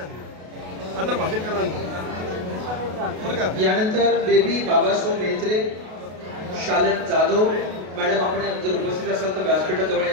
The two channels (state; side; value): late; left; 33 ms